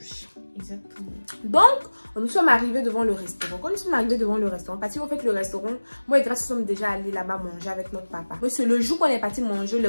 Exactement. Donc, nous sommes arrivés devant le restaurant. Quand nous sommes arrivés devant le restaurant, parce qu'en fait, le restaurant, moi et Grâce, nous sommes déjà allés là-bas manger avec notre papa. Mais c'est le jour qu'on est parti manger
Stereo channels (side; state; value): both; inverted; correlation -1.00